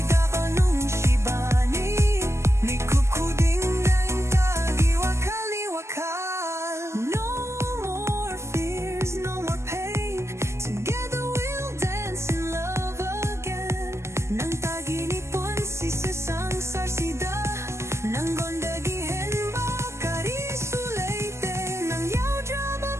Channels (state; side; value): late; left; 0.13 ms